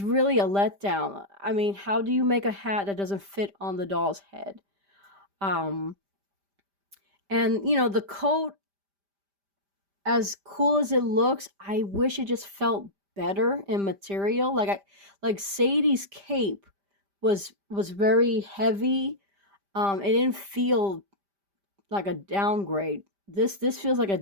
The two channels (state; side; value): late; left; 5.1 ms